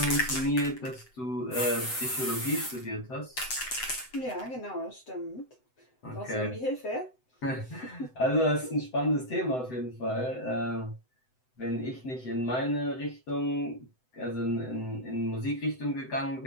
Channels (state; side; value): late; right; 7.9 ms